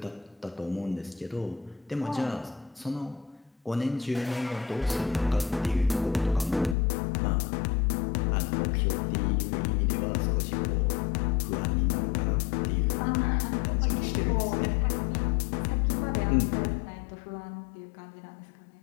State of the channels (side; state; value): right; drops out; at 6.8 s